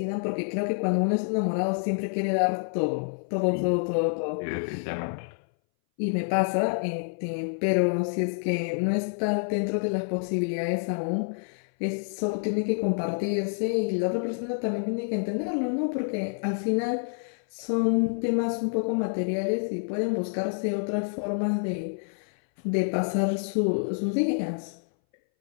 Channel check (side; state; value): right; silent; 60 dB below the other